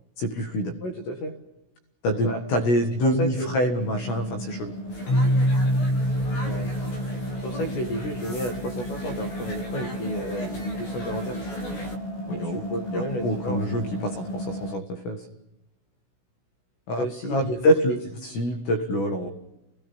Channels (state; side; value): late; right; 16 ms